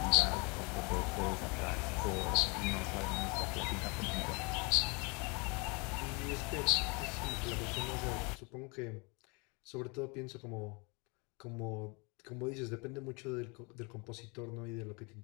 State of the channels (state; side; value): quieter; right; 30.3 dB